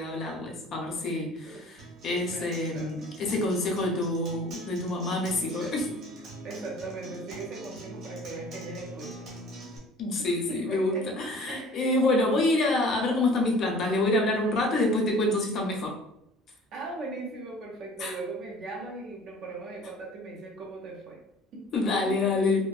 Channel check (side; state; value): both; normal; correlation 0.48